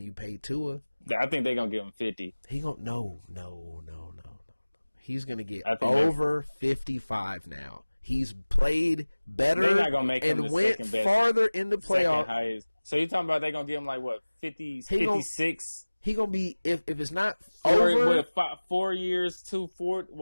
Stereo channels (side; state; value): both; inverted; correlation -1.00